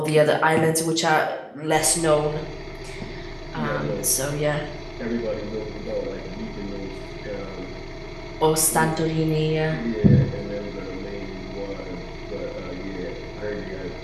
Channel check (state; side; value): identical; both; correlation 1.00